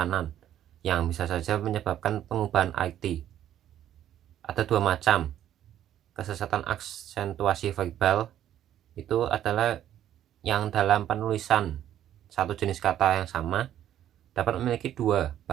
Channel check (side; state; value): left; quieter; 11.4 dB